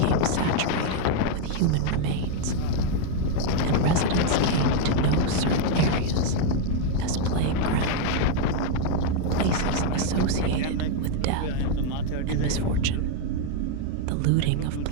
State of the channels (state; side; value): different; both; correlation 0.00